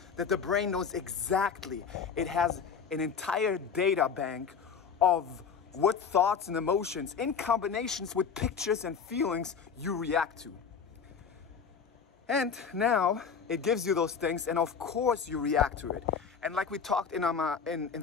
that the brain knows exactly. It has an entire data bank of what thoughts and emotions in combinations with pictures and feelings you react to. And now it gives you those things, and of course you react to it. And like we talked in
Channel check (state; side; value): quieter; right; 6.3 dB